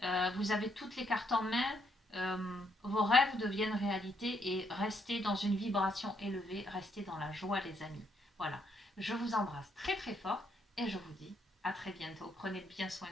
Vous avez toutes les cartes en main. Vos rêves deviennent réalité et restez dans une vibration élevée. Restez dans la joie, les amis. Voilà. Je vous embrasse très très fort et je vous dis à très bientôt. Prenez bien soin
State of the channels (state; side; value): normal; both; correlation 0.74